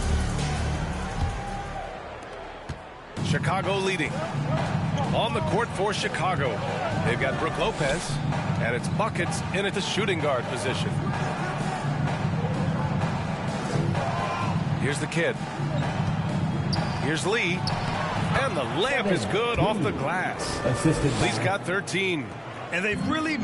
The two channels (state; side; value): identical; both; correlation 1.00